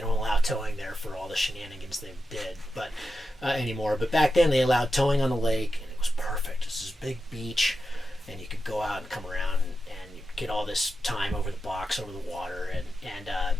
allow towing there for all the shenanigans they did, but anymore. But back then they allowed towing on the lake, and it was perfect. This is a big beach, and you could go out and come around and you get all this time over the box, over the water,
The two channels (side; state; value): both; normal; correlation 0.89